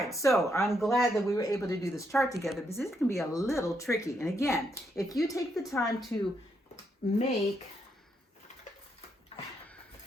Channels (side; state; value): both; normal; correlation 0.78